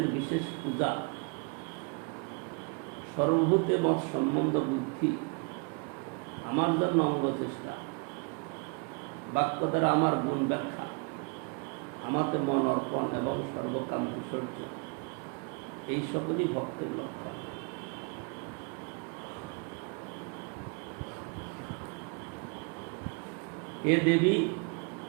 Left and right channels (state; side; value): quieter; left; 35.2 dB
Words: বিশেষ পূজা, সর্বভূতে মত সম্বন্ধ বুদ্ধি, আমার জন্য অঙ্গ চেষ্টা, বাক্য দ্বারা আমার গুণ ব্যাখ্যা, আমাতে মন অর্পণ এবং সর্বকাম বিসর্জন, এই সকলই ভক্তের লক্ষণ। হে দেবী,